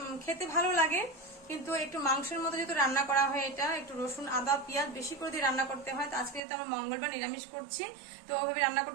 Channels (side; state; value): left; drops out; at 6.4 s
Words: খেতে ভালো লাগে, কিন্তু একটু মাংসের মতো যেহেতু রান্না করা হয়, এটা একটু রসুন আদা পেঁয়াজ বেশি করে দিয়ে রান্না করতে হয়। তো আজকে যেহেতু আমার মঙ্গলবার নিরামিষ করছি, তো ওভাবে রান্না